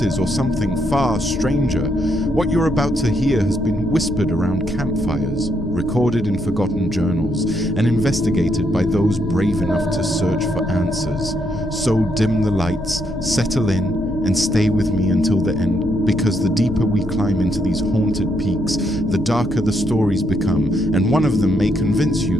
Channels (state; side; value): normal; both; correlation 0.76